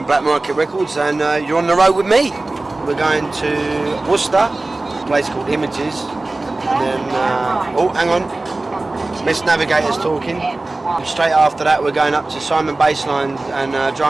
Black Market Records, and you're on the road with me. We're going to Worcester, a place called Images, and then, oh, hang on, Miss Navigator's talking. And straight after that, we're going up to Simon Bassline and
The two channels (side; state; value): left; quieter; 3.0 dB